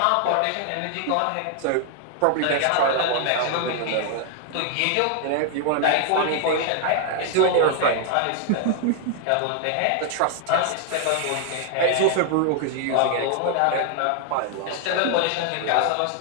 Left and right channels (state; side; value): different; both; correlation 0.00